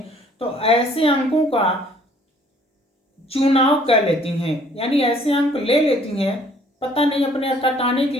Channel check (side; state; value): both; normal; correlation 0.59